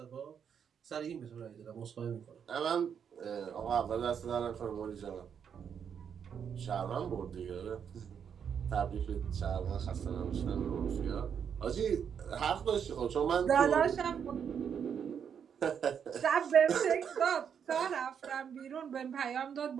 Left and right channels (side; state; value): left; quieter; 7.6 dB